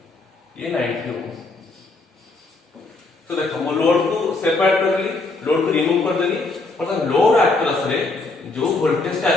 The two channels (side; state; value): right; quieter; 3.4 dB